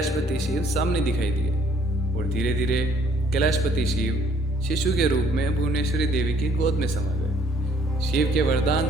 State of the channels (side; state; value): both; normal; correlation 0.62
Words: शिव सामने दिखाई दिए और धीरे धीरे कैलाशपति शिव शिशु के रूप में भुवनेश्वरी देवी की गोद में समा गए। शिव के वरदान